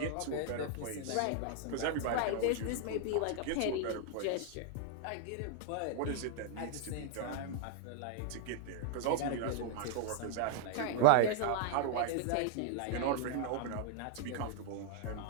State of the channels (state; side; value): different; both; correlation -0.01